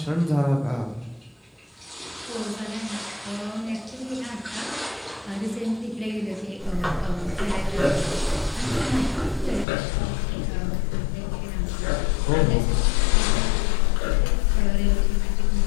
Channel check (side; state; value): right; drops out; at 9.7 s